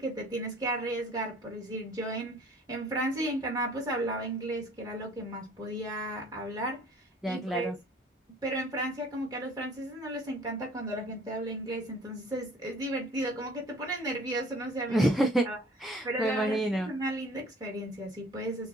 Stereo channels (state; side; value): normal; both; correlation 0.52